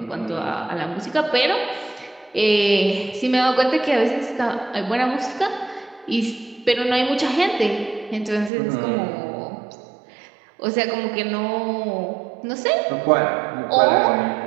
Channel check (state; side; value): drops out; left; at 8.5 s